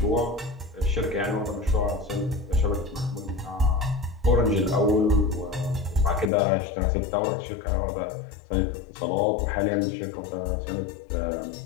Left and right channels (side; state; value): right; drops out; at 6.3 s